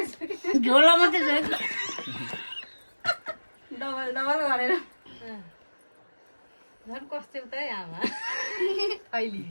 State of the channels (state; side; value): inverted; both; correlation -1.00